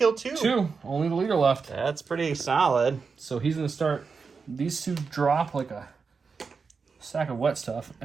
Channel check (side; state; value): left; quieter; 5.1 dB